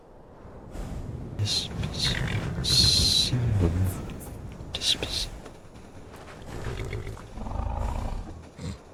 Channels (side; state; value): both; identical; correlation 1.00